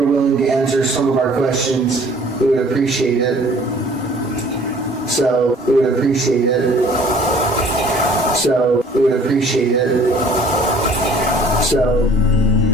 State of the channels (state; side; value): normal; both; correlation 0.53